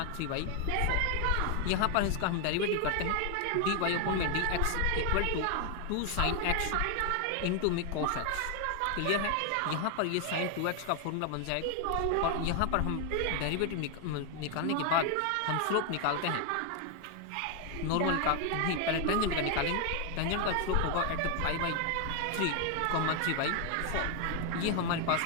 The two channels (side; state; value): both; different; correlation 0.00